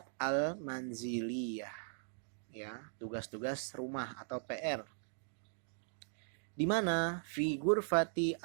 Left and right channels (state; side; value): silent; left; digital silence